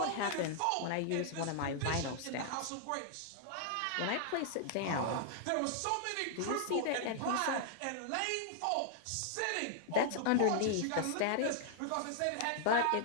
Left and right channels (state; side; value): different; both; correlation -0.01